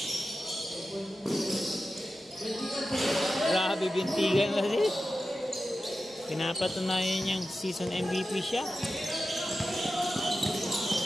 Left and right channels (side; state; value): both; normal; correlation 0.93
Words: bintigan kasi. Pinapatunayan niyang season MVP siya.